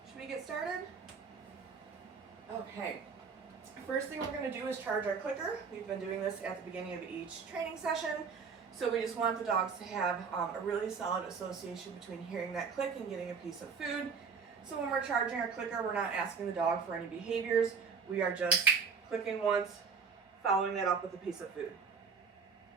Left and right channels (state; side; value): quieter; left; 5.6 dB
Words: Should we get started? Okay. First thing we're going to do is charge our clicker. We've been doing this at the beginning of each training session, so we just want the dogs to have a really solid association between hearing that click and getting a piece of food. So when we're charging our clicker, we're not asking the dog for any behaviors. We are just clicking once, following that up with a piece of food.